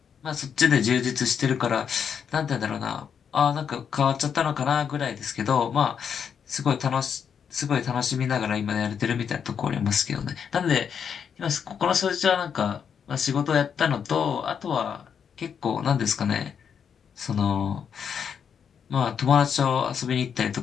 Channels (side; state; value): right; quieter; 7.4 dB